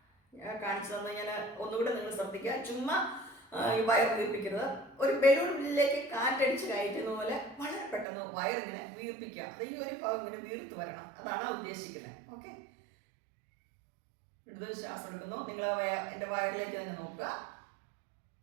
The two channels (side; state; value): left; drops out; at 8.1 s